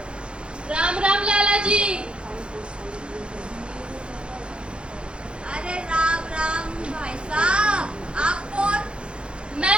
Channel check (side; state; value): left; late; 0.055 ms